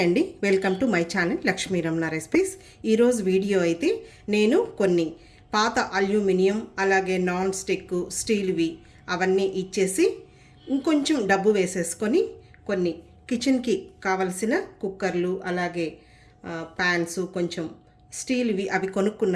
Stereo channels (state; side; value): identical; both; correlation 1.00